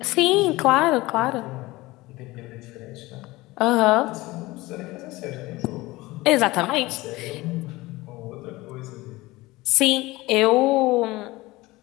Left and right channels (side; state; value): right; quieter; 20.1 dB